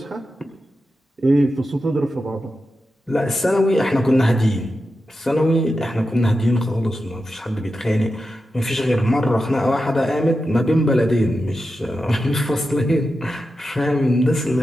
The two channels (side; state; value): both; normal; correlation 0.90